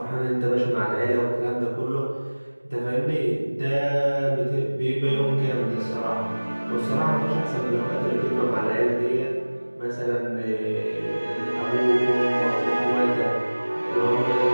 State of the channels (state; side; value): inverted; both; correlation -1.00